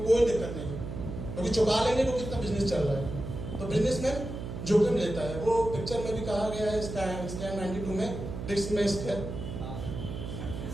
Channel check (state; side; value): noise; right; hum, 7 dB below the sound